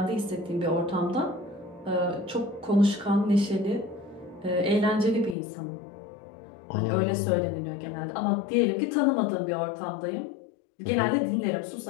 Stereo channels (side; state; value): right; drops out; at 5.4 s